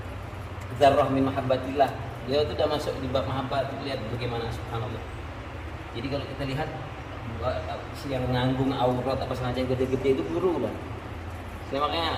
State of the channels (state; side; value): identical; both; correlation 1.00